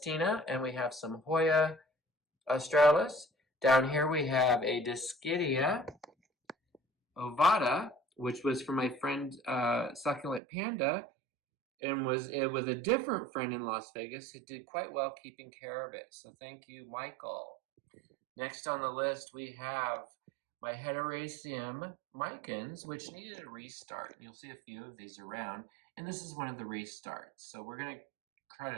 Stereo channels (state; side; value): drops out; left; at 10.4 s